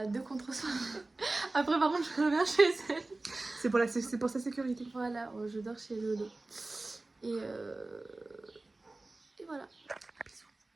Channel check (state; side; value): quieter; left; 3.1 dB